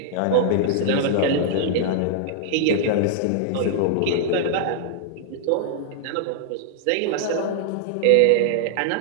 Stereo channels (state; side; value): different; both; correlation -0.01